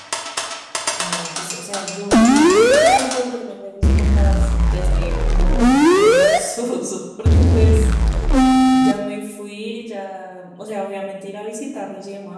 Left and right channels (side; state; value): both; identical; correlation 1.00